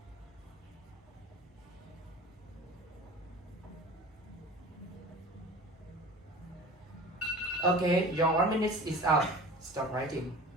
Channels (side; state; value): both; normal; correlation 0.39